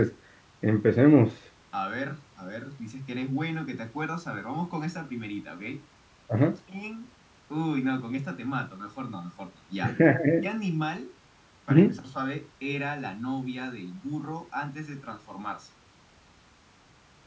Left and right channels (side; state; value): both; identical; correlation 1.00